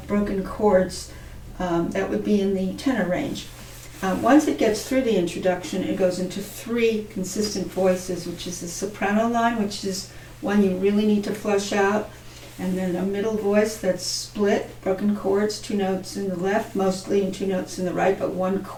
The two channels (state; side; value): identical; both; correlation 1.00